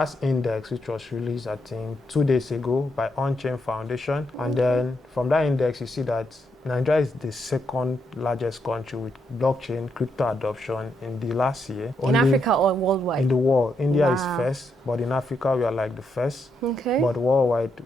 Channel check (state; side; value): normal; both; correlation 0.80